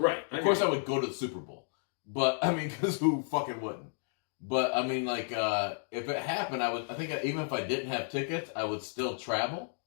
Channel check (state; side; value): silent; right; digital silence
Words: Of course, I would go to the Super Bowl, but I mean, because who fucking wouldn't? But I mean, like, if it happened, I think even if I didn't have tickets, I would still travel.